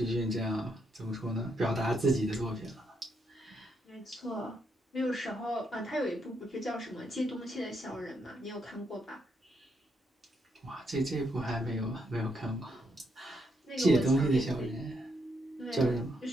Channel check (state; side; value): normal; both; correlation 0.78